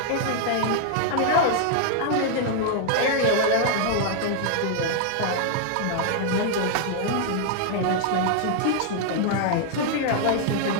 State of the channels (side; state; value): both; different; correlation 0.00